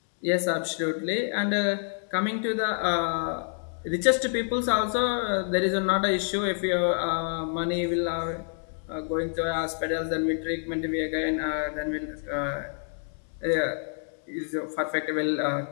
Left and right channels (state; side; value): silent; right; digital silence